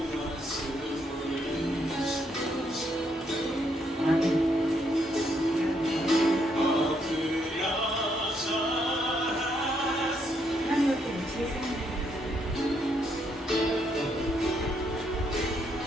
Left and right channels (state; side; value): normal; both; correlation 0.74